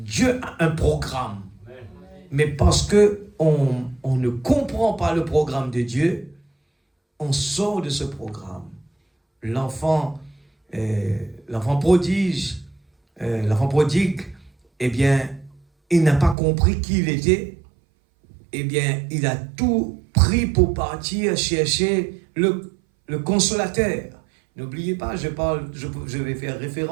a un programme. Mais parce que on ne comprend pas le programme de Dieu, on sort de ce programme. L'enfant prodigue, eh bien, il n'a pas compris qui il était. Eh bien, il a tout pris pour partir chercher le consolateur. N'oubliez pas, je vais faire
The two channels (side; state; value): left; drops out; at 16.4 s